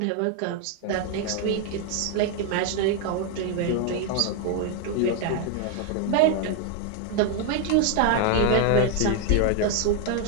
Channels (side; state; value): both; different; correlation 0.01